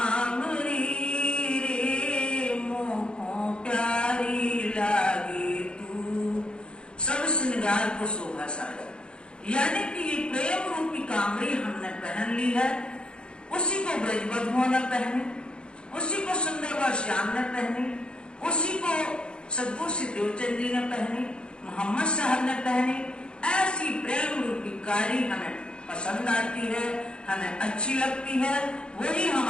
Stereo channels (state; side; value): late; right; 0.053 ms